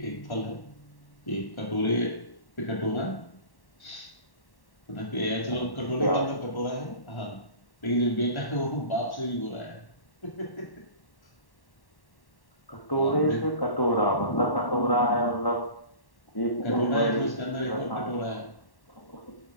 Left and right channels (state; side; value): late; right; 1.1 ms